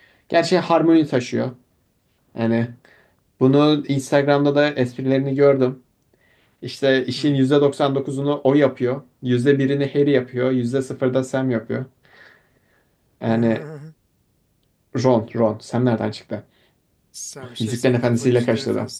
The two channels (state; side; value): identical; both; correlation 1.00